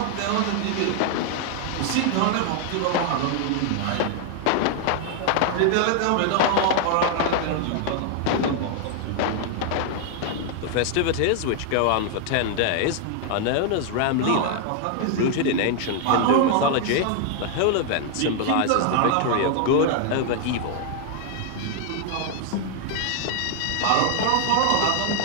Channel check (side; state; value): both; different; correlation 0.00